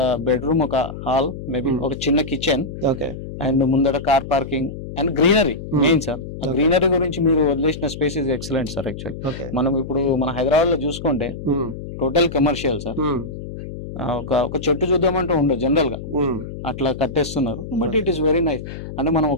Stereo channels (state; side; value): noise; left; hum, 10 dB below the sound